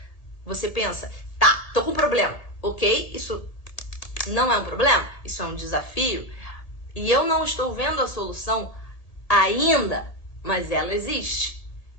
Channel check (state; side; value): late; right; 1.7 ms